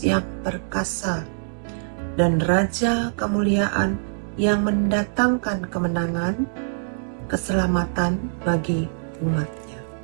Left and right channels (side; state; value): left; silent; digital silence